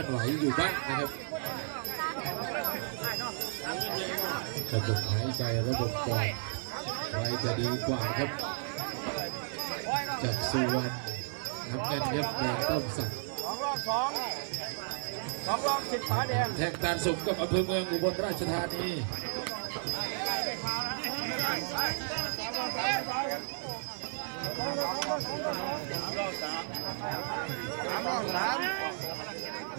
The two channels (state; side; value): silent; left; digital silence